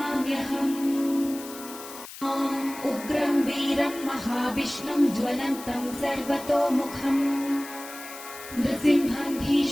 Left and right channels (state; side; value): noise; left; hiss, 14 dB below the sound